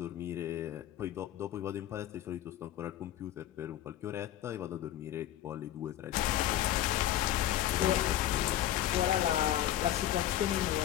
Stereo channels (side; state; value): right; quieter; 12.6 dB